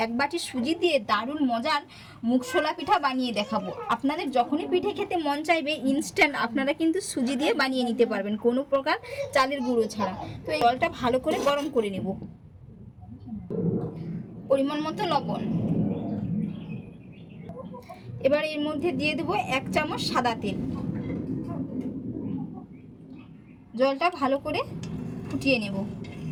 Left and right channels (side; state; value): both; identical; correlation 1.00